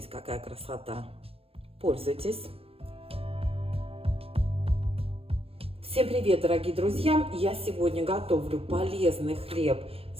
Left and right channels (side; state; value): left; late; 0.28 ms